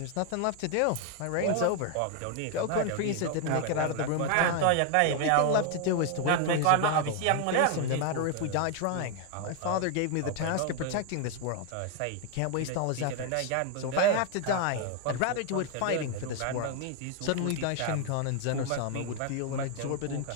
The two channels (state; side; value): different; both; correlation 0.00